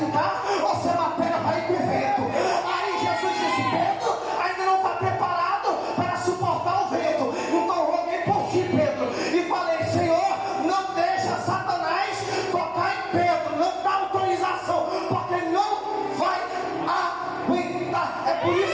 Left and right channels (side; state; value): right; noise; hum, 28 dB below the sound